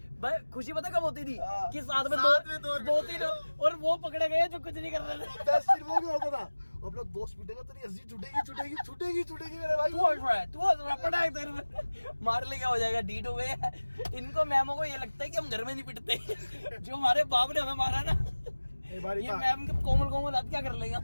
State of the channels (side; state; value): both; inverted; correlation -1.00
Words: भाई, खुशी पता कब होती थी हाँ। कि साथ में साथ में दो तीन और वो पकड़े गए जो कुछ नहीं कर रहे थे। दस दिन वो भी होता था, अब लोग दोस्त पीटेगा तेरी हंसी छूटेगी मेरे भाई। तू हंस रहा है, पटाख तेरे में मार ले, क्या हो जाएगा, डीट हो गए। इनको मैमों को ये लगता है कि हम घर में नहीं पिटते, जो हमारे बाप ने हमें मारा ना, एक बार ये मैम के कोमल हाथ क्या कर लेगा।